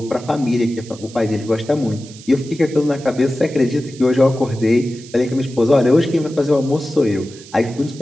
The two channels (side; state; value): right; noise; hiss, 20 dB below the sound